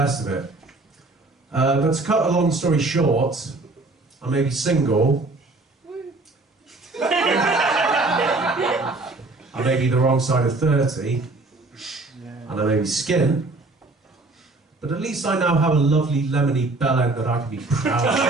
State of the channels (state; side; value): quieter; left; 3.2 dB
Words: of it. But to cut a long story short, I may be single. I may be the wrong side of 30, and I may be skint, but at least I now have a lovely lemony bellend that I can be proud of.